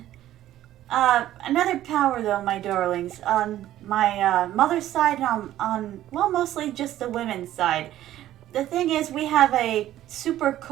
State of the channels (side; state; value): left; quieter; 13.3 dB